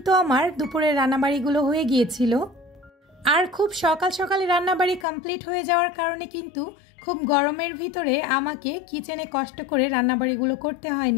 আমার দুপুরের রান্নাবাড়িগুলো হয়ে গিয়েছিল। আর খুব সকাল সকালে রান্নাবাড়ি কমপ্লিট হয়ে যাওয়ার কারণে কিন্তু খুব গরমের ভিতরে আমাকে কিচেনে কষ্ট করে রান্নাবাড়িগুলো করতে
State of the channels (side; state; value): right; drops out; at 5.1 s